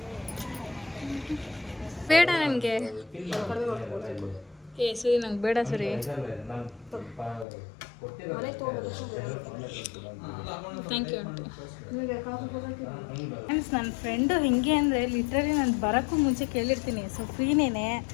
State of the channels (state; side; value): drops out; right; at 7.5 s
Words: ಬೇಡ ನನಗೆ ಏ ಸರಿ ನಂಗೆ ಬೇಡ ಸರಿ. Thank you aunty. ಫ್ರೆಂಡ್ಸ್ ನನ್ನ ಫ್ರೆಂಡು ಹಿಂಗೆ ಅಂದರೆ ಲಿಟ್ರಲಿ ನಾನು ಬರೋಕ್ಕೂ ಮುಂಚೆ ಕೇಳಿರ್ತೀನಿ ಸೊ ಫ್ರೀನೇನೆ